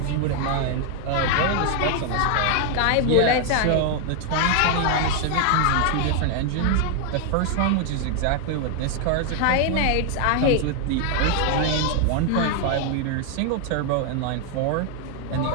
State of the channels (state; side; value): different; both; correlation 0.00